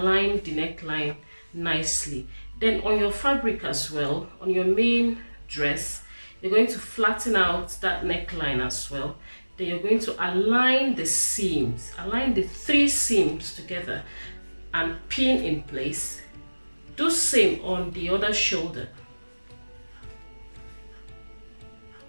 the neckline nicely. Then on your fabric as well, on your main dress, you're going to flatten out that neckline as well. Then you're going to align the seams, align the 3 seams together and pin in place. Do same on the other shoulder.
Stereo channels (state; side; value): inverted; both; correlation -1.00